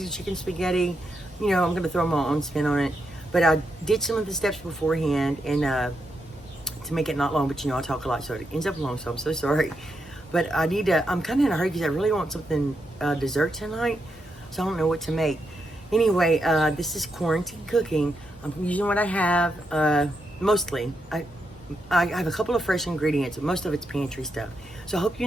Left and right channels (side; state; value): both; normal; correlation 0.83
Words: chicken spaghetti. You know, I'm gonna throw my own spin on it. But I did some of the steps beforehand, and to make it not long, but you know, I talk a lot, so it ends up long, so I'm so sorry. But I need to, I'm kind of in a hurry because I really want something dessert tonight, so I don't know what to make. Anyway, this is quarantine cooking. I'm using what I have, mostly. I have a couple of fresh ingredients, but most of it's pantry stuff. So I hope you